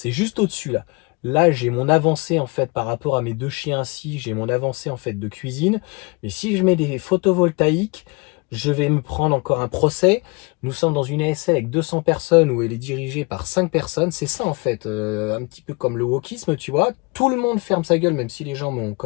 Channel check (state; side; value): quieter; right; 28.8 dB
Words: juste au-dessus là. Là, j'ai mon avancée en fait par rapport à mes 2 chiens ici, j'ai mon avancée en fait de cuisine. Mais si je mets des photovoltaïques, je vais me prendre encore un procès. Nous sommes dans une ASL avec 200 personnes où elle est dirigée par 5 personnes. C'est ça en fait, un petit peu comme le wokisme, tu vois. Tout le monde ferme sa gueule, même si les gens m'ont quand